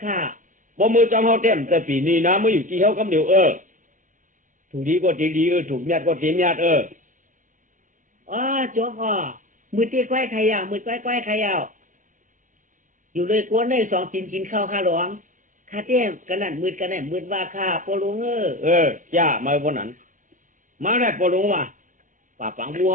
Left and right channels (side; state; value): left; late; 0.38 ms